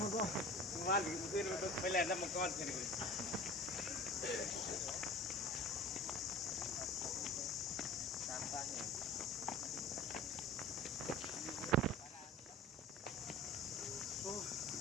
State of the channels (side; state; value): both; normal; correlation 0.39